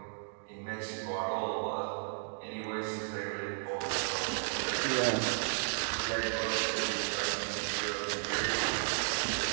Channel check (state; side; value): silent; left; 55 dB below the other